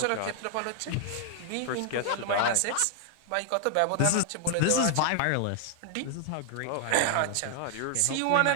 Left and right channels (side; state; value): both; different; correlation 0.00